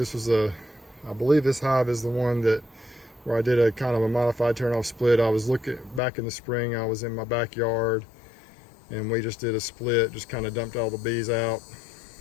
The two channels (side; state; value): right; drops out; at 6.0 s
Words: hive is the one where I did a kind of a modified turn-off split. I was looking back in the spring. I was in my backyard, and we just did a split. Just kind of dumped all the bees out.